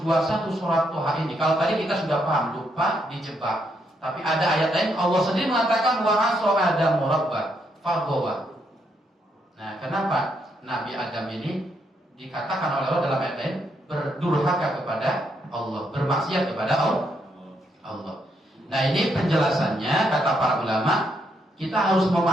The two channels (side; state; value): both; normal; correlation 0.76